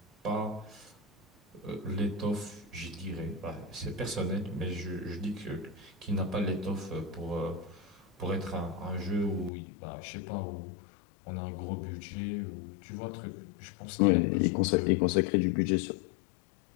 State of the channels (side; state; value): right; drops out; at 9.5 s